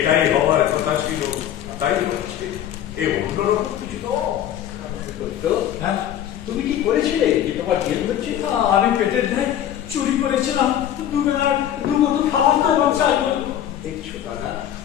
হওয়ার কথা ছিল, তাই হচ্ছে। এ অন্যরকম কিছু তো। সত্য, তুমি কি করেছিলে যে তোমার জেল হচ্ছে? আমি পেটের দেয় চুরি করেছিলাম, দুবেলার দুমতো খাবার তো আমার চাই। দেখছো দাদা,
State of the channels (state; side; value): quieter; right; 10.9 dB